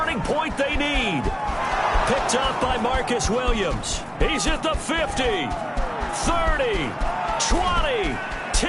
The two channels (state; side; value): identical; both; correlation 1.00